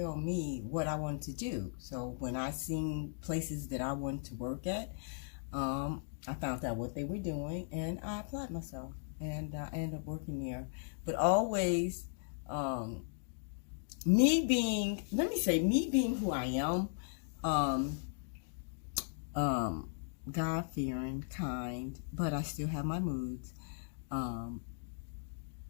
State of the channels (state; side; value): silent; right; digital silence